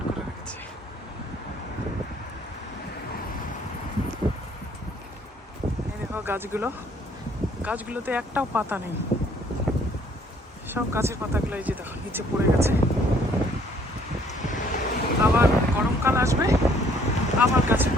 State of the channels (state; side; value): normal; both; correlation 0.62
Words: করে রেখেছে। এই দেখো গাছগুলোতে একটাও পাতা নেই, সব গাছের পাতাগুলো এই যে দেখো নিচে পড়ে গেছে। আবার গরমকাল আসবে, আবার গাছের